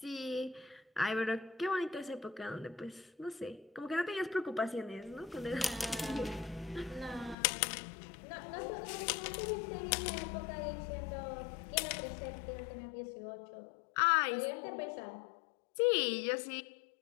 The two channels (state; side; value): drops out; right; at 7.4 s